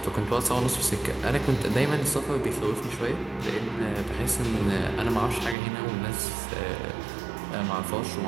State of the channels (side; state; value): left; drops out; at 5.6 s